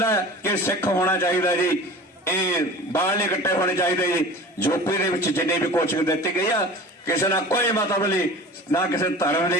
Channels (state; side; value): normal; both; correlation 0.38